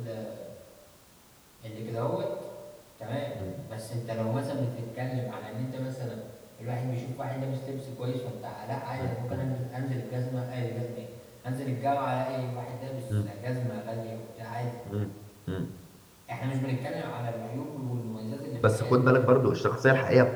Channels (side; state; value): both; identical; correlation 1.00